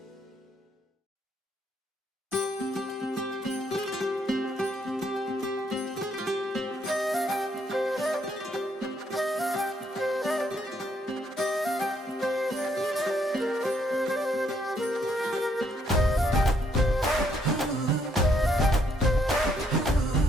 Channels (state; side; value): normal; both; correlation 0.71